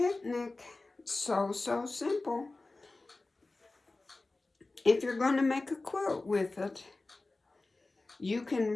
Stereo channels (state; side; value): quieter; right; 3.2 dB